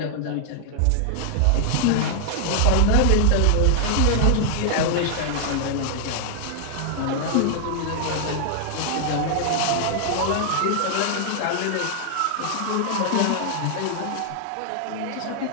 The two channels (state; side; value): different; both; correlation 0.00